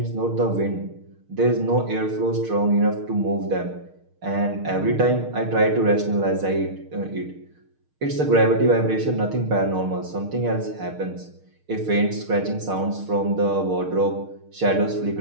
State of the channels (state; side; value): late; left; 6.6 ms